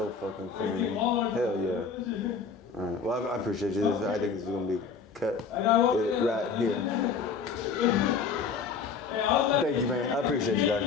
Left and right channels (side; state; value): right; quieter; 5.5 dB